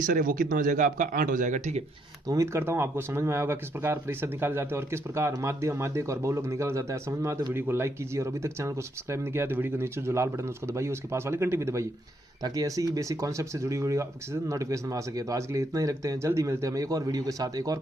है वो कितना हो जाएगा आपका 8 हो जाएगा। ठीक है, तो उम्मीद करता हूँ आपको समझ में आया होगा किस प्रकार परिसर निकाले जाते हैं और किस प्रकार माध्यक और बहुलक निकाला जाता है। समझ में आया तो वीडियो को लाइक कीजिए और अभी तक चैनल को सब्सक्राइब नहीं किया तो वीडियो के नीचे जो लाल बटन है उसको दबाइए, उसके पास वाली घंटी भी दबाइए ताकि ऐसी ही बेसिक कॉन्सेप्ट से जुड़ी वीडियो आपके नोटिफिकेशन में आ सके। तो आज के लिए इतना ही रखते हैं, जल्दी मिलते हैं हम एक और वीडियो के साथ, एक और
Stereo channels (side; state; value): both; normal; correlation 0.73